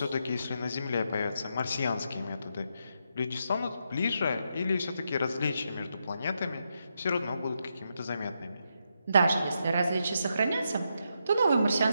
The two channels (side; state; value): both; inverted; correlation -0.82